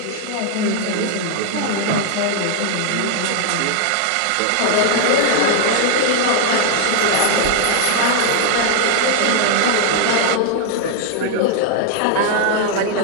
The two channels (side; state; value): both; different; correlation 0.00